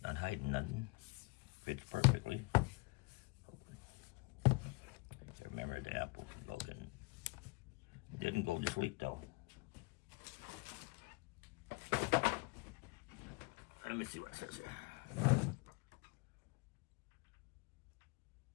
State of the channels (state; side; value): quieter; right; 27.1 dB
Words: not hiding nothing. Fits perfectly. Remember the Apple broken. It didn't go to sleep though. Let me see what it says here.